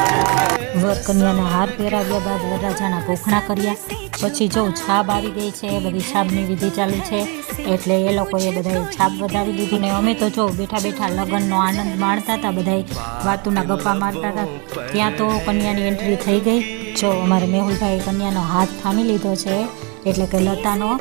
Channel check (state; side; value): quieter; left; 32.1 dB